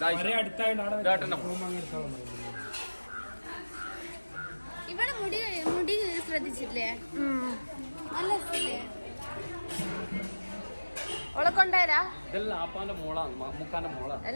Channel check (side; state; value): both; inverted; correlation -1.00